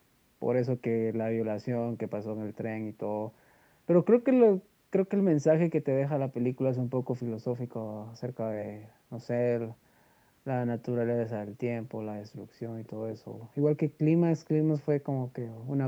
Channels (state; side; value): identical; both; correlation 1.00